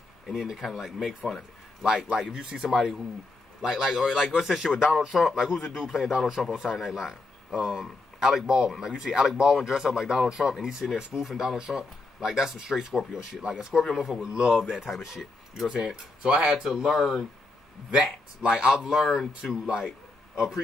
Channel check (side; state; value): right; quieter; 3.3 dB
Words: and then to kind of, like, make fun of it. Like, if you see somebody who, or what's that shit with Donald Trump? Like, who's the dude playing Donald Trump on Saturday Night Live? Alec Baldwin. Like, you see Alec Baldwin dress up like Donald Trump, and he's sitting there spoofing Donald Trump. Like, that's some straight Scorpio shit. Like, a Scorpio motherfucker would love that type of shit. You know what I'm saying? So I had to learn that. Like, I've learned to, like,